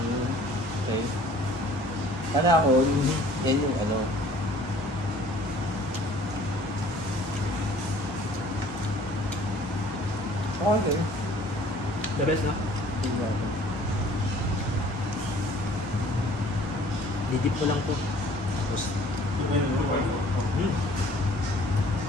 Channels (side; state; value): both; normal; correlation 0.53